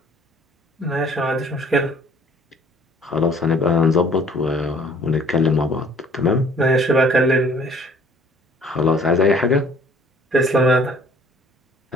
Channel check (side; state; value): both; normal; correlation 0.55